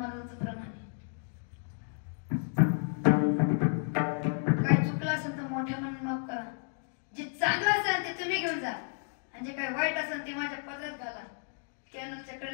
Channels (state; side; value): silent; right; 56 dB below the other